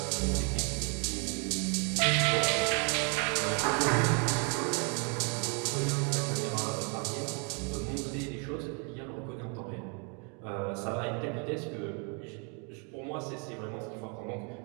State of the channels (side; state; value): left; quieter; 36.1 dB